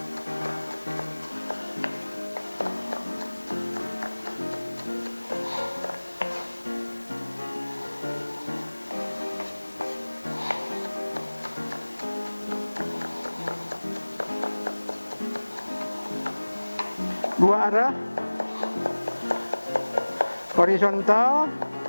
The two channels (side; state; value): both; inverted; correlation -1.00